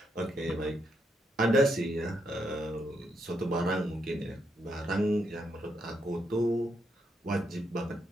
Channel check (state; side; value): normal; both; correlation 0.79